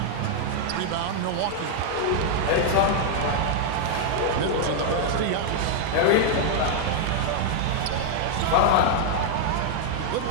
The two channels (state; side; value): different; both; correlation 0.00